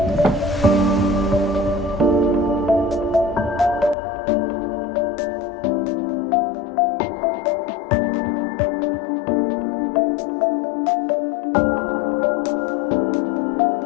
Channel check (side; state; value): right; drops out; at 4.0 s